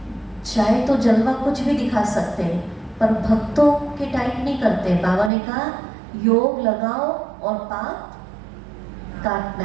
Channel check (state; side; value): drops out; left; at 5.3 s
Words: चाहे तो जलवा कुछ भी दिखा सकते हैं, पर भक्तों के टाइप नहीं करते। बाबा ने कहा योग लगाओ और पाप काटना